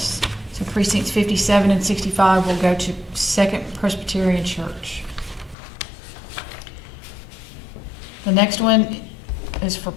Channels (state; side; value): drops out; right; at 5.6 s